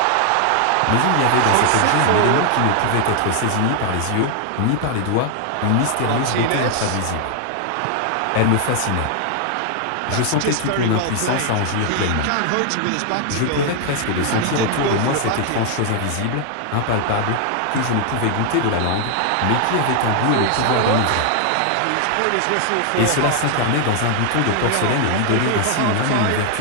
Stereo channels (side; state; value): both; different; correlation 0.00